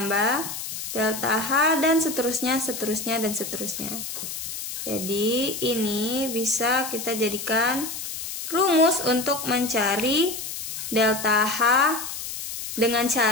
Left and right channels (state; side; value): noise; left; hiss, 6 dB below the sound